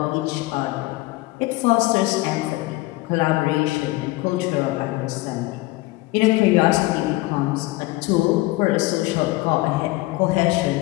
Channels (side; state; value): right; quieter; 20.2 dB